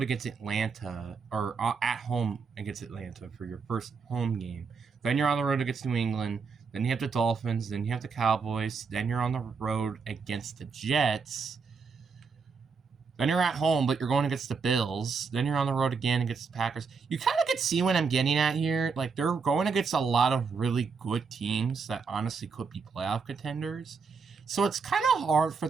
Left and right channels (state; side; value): quieter; left; 5.2 dB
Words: against Atlanta, or at home against Atlanta for your first home game. Then you're on the road against New England. Then you have the Dolphins. Then you have the Cowboys. Then you're on the road against the Jets. Then you're at home, but you're going against the Bills. Then you're on the road again against the Packers. You kind of can see what I'm getting at here. Like, they're going against a lot of really good teams that honestly could be playoff contenders. So it's kind of hard for